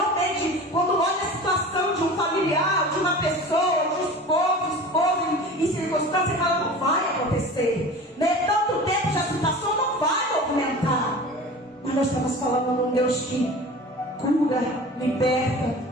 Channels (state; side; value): normal; both; correlation 0.37